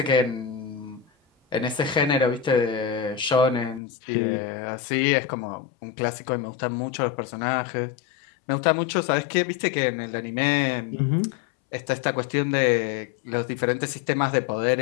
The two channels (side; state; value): right; drops out; at 3.8 s